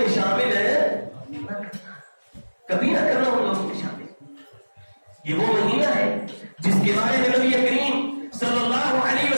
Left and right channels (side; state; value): both; inverted; correlation -1.00